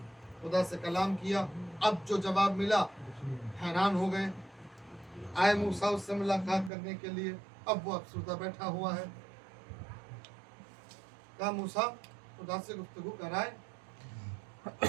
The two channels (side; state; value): left; drops out; at 6.7 s